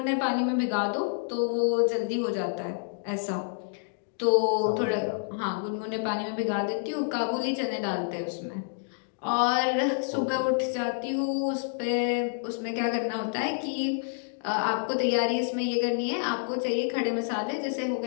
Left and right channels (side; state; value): right; silent; digital silence